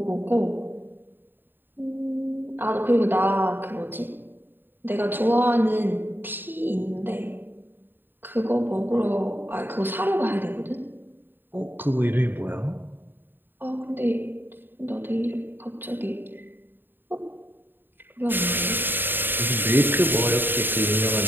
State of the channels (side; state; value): left; late; 0.095 ms